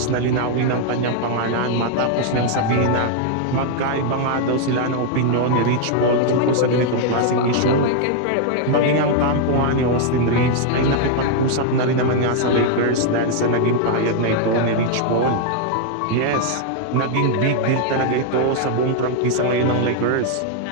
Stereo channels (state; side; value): different; both; correlation 0.00